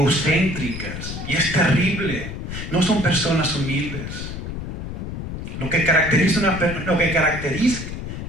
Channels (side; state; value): left; noise; rumble, 7 dB below the sound